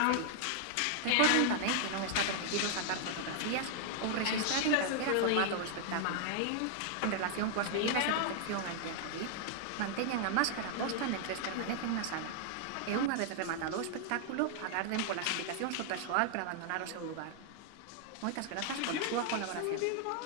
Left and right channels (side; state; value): both; different; correlation 0.00